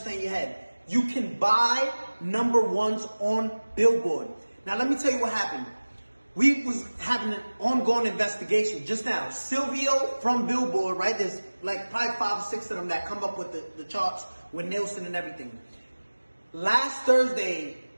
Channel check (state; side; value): inverted; both; correlation -1.00